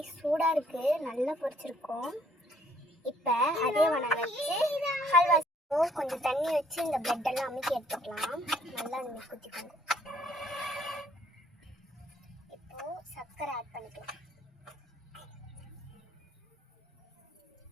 சூடாக இருக்குது, நல்லா பொரிச்சிருக்கோம். இப்போ அதே வனம் வச்சு ஹல்வா கொஞ்சம் தண்ணி வச்சு இந்த பிரெட்டெல்லாம் அமுக்கி எடுத்துக்கலாம். நல்லா நம்ம குத்திக்கோங்க. இப்போது சர்க்கரை ஆட் பண்ணிக்கலாம்.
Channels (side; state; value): both; normal; correlation 0.64